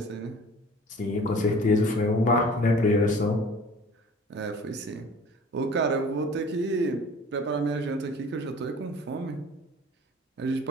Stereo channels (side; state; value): both; normal; correlation 0.46